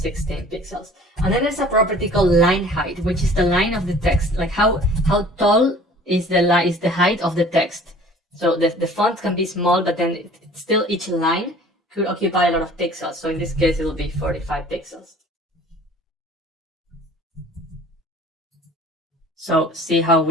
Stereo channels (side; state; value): both; normal; correlation 0.48